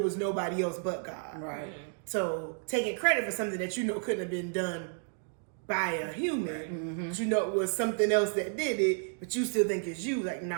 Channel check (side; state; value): left; silent; 57 dB below the other